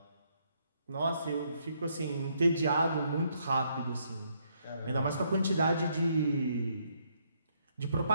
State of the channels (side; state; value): both; inverted; correlation -0.72